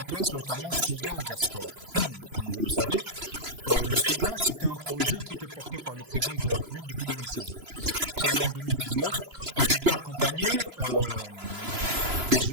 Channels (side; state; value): left; late; 3.0 ms